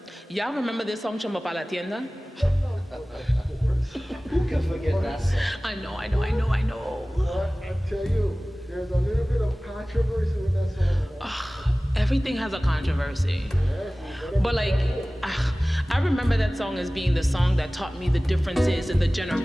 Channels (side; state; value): both; normal; correlation 0.98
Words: y'all remember this song, Chombo Pa La Tienda? Who can forget that song? I know. But I tell you, there's a little bit of controversy with that song. Everything has a controversy. But like, I remember that song as being the song that taught me the differences in the